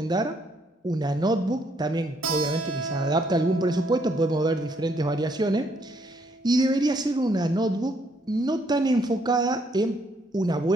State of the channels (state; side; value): normal; both; correlation 0.70